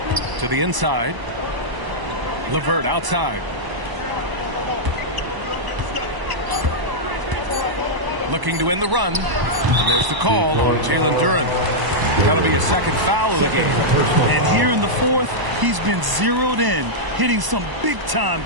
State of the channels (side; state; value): left; late; 1.0 ms